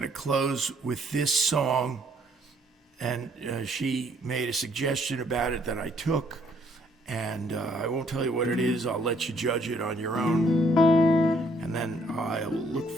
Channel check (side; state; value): both; normal; correlation 0.66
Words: close with this song. And she made a suggestion about it that I took, and I won't tell you what it is. I'll let you judge it on your own, and then I'll look